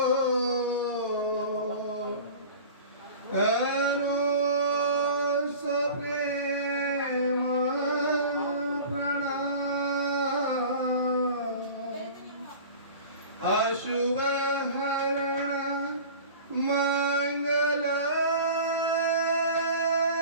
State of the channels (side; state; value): both; inverted; correlation -0.39